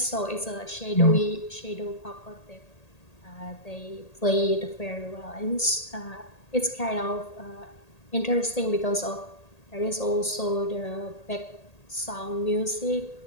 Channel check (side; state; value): right; late; 1.8 ms